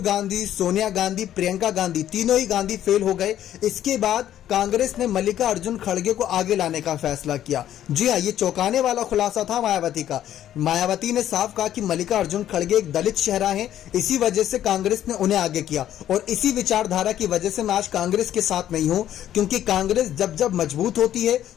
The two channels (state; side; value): quieter; right; 11.5 dB